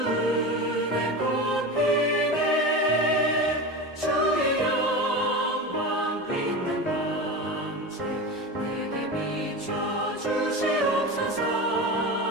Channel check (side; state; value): both; normal; correlation 0.26